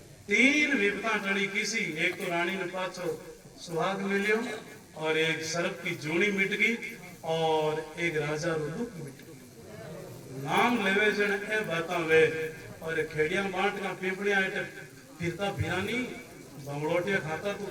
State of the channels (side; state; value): both; identical; correlation 1.00